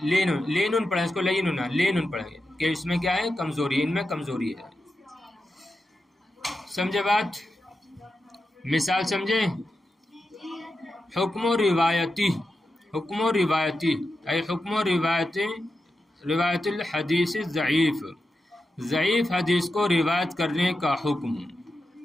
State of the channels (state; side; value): normal; both; correlation 0.89